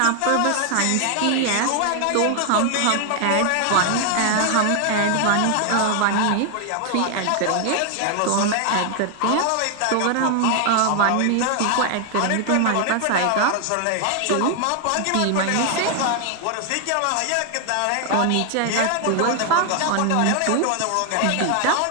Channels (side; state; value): both; different; correlation 0.00